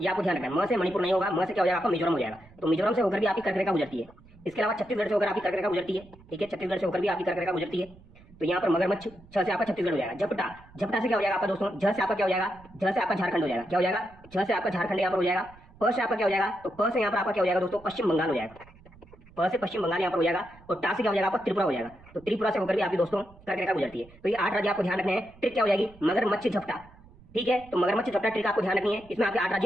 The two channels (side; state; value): right; noise; rumble, 24 dB below the sound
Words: ये आपको ध्यान रखना है। म से मणिपुर नहीं होगा। म से क्या हो जाएगा आपका? मिजोरम हो जाएगा। तो मिजोरम से होकर भी आपकी कर्क रेखा गुजरती है। इसके अलावा छत्तीसगढ़ से होकर आपकी कर्क रेखा गुजरती है। ठीक है, छत्तीसगढ़ से होकर भी आपकी कर्क रेखा गुजरती है। तो यहाँ पर मगरमच्छ, छ से आपका छत्तीसगढ़ हो जाएगा। झपटा, झपटा से क्या हो जाएगा आपका दोस्तों? झ से आपका क्या हो जाएगा? झ से आपका झारखंड हो जाएगा। क्या हो जाएगा? झ से आपका झारखंड यहाँ पर हो जाएगा। प से आपका क्या हो जाएगा? तो प से यहाँ पर आपका क्या हो जाएगा दोस्तों? पश्चिम बंगाल हो जाएगा। प से पश्चिम बंगाल यहाँ पर हो जाएगा। और टा से क्या हो जाएगा आपका? त्रिपुरा हो जाएगा। तो त्रिपुरा से होकर भी आपकी दोस्तों कर्क रेखा गुजरती है। तो ये 8 राज्य आपको ध्यान रखने हैं। ट्रिक क्या हो जाएगी? मगरमच्छ झपटा। ठीक है, तो मगरमच्छ झपटा ट्रिक आपको ध्यान रखनी है। इसमें आपके 8